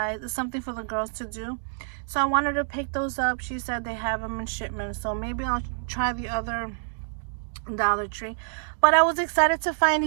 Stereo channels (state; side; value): silent; left; digital silence